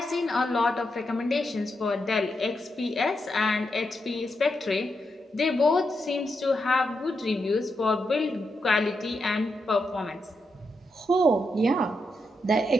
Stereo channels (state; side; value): normal; both; correlation 0.84